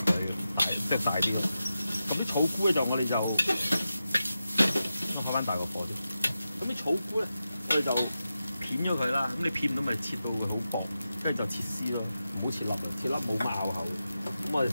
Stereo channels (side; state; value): both; inverted; correlation -0.91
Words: 大啲。咁啲草菇咧就我哋就開翻大個火先。咁啲草菇咧，我哋就片咗佢啦。咁你片唔到咪切到佢好薄，跟住就切絲咯，唔好切粒啊！切粒冇乜咬口。咁我哋睇